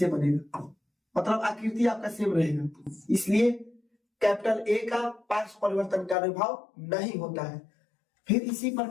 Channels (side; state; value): right; drops out; at 6.2 s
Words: बनेगा, मतलब आकृति आपका सेम रहेगा। इसलिए कैपिटल ए का पार्श्व परिवर्तन का अनुभव नहीं होता है। फिर इसी